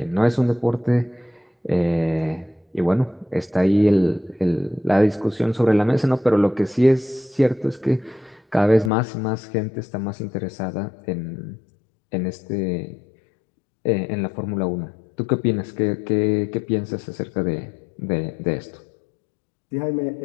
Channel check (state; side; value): drops out; right; at 8.9 s